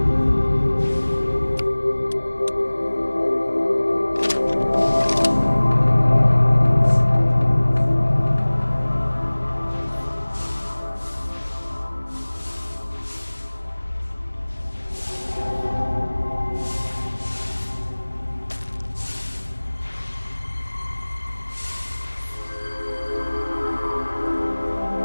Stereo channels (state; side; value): inverted; both; correlation -1.00